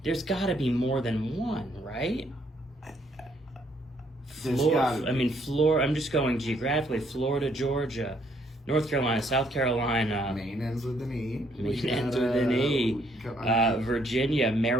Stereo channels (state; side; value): normal; both; correlation 0.69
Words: There's got to be more than one, right? There's gotta be. I mean, Florida. I'm just going geographically. Florida, Georgia, North Carolina, South Carolina. Maine ends with an E. Maine ends with an E. I mean, Virginia,